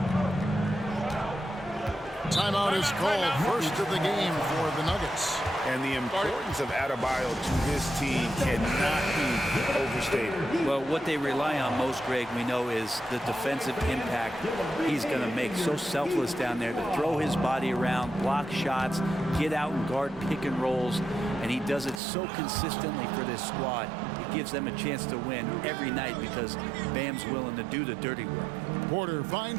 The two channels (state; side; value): drops out; left; at 22.0 s